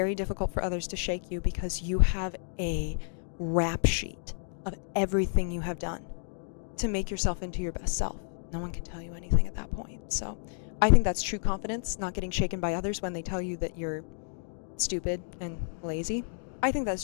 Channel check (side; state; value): right; silent; digital silence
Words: difficult for others to shake you because you have a rap sheet of everything you have done to make yourself into your best self. No one can tell you anything at that point. So I think that's true confidence, not getting shaken by others when they tell you that you're stupid and lazy. I think that's